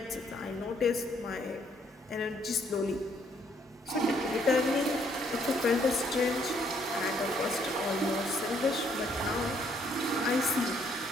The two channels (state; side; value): normal; both; correlation 0.68